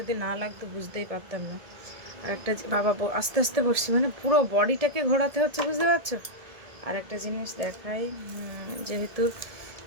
না লাগতো বুঝতেই পারতাম না। আর একটা বাবা আস্তে আস্তে বসছি, মানে পুরো বডিটাকে ঘোরাতে হচ্ছে, বুঝতে পারছো। আর একটা জিনিস দেখাই, যেহেতু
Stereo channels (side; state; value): left; late; 1.7 ms